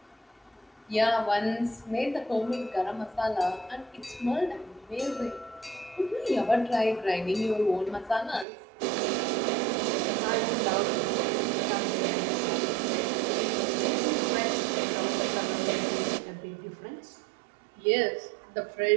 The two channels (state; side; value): drops out; left; at 8.5 s